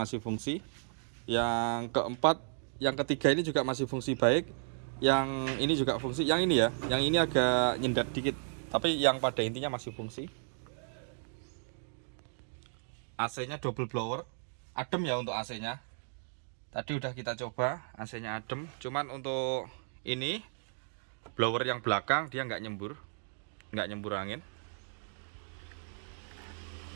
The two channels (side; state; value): left; silent; digital silence